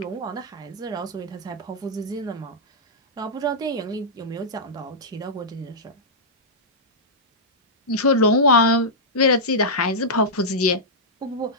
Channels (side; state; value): both; normal; correlation -0.11